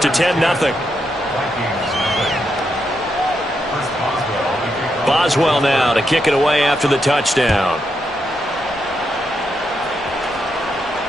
10-0. Boswell now to kick it away after the touchdown.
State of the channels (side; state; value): both; normal; correlation 0.82